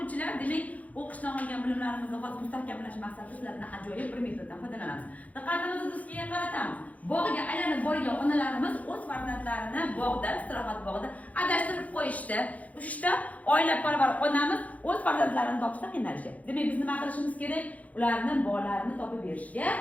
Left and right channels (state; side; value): late; right; 0.071 ms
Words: o'quvchilar, demak, o'qishdan olgan bilimlarimizni hozir mustahkamlash maqsadida sizlardan ajoyib bir metoddan foydalanamiz. Diqqatimizni do'stga qaratamiz. Bog'ga aylanib borgan onalarimiz o'z farzandlarini bog'da, istirohat bog'ida adashtirib qo'yishdi. Uchta oilaparvar onamiz o'z farzandlarini topishda qiynalishyapti. Demak, biz nima qilishimiz kerak? Ularni bolalarni topib berishga